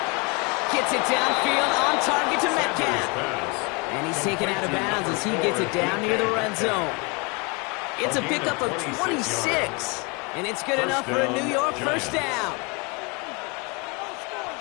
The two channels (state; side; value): quieter; right; 29.3 dB